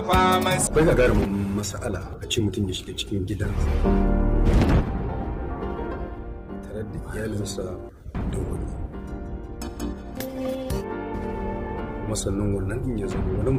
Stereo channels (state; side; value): identical; both; correlation 1.00